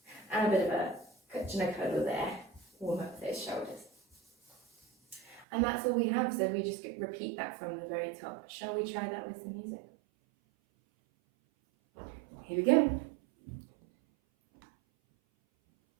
and a bit of a cuddle there, warm up those shoulders. And that's all we have, so we just repeat that from the very top. Shall we try that with some music? Here we go.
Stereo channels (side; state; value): left; drops out; at 5.5 s